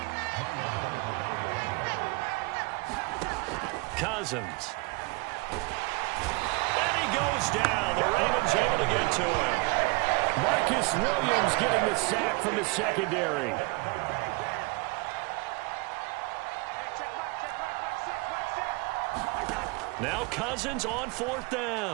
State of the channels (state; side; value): quieter; left; 26.7 dB